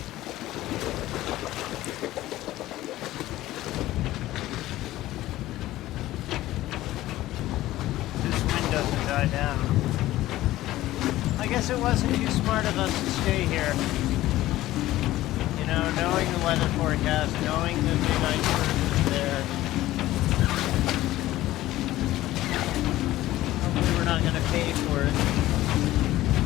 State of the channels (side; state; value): right; quieter; 15.7 dB